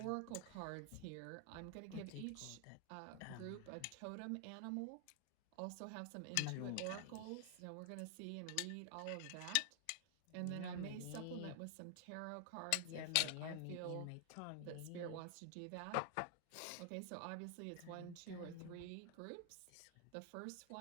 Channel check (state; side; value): different; both; correlation 0.00